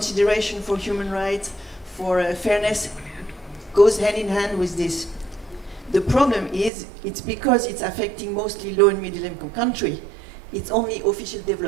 for human rights, for fairness, goes hand in hand with this. The problem is, it's because it's affecting mostly low and middle income country. It's only official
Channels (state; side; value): drops out; left; at 6.7 s